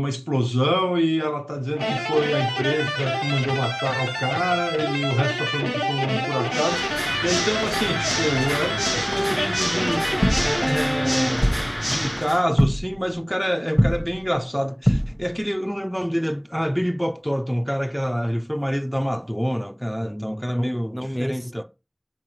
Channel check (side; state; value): both; identical; correlation 1.00